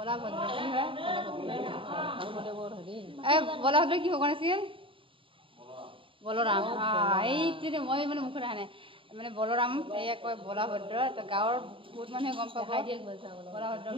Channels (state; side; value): late; left; 0.25 ms